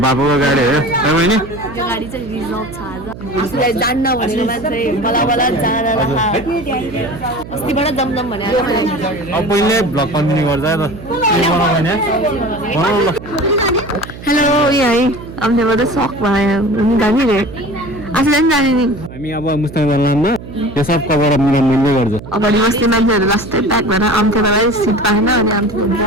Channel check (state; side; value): noise; right; hum, 14 dB below the sound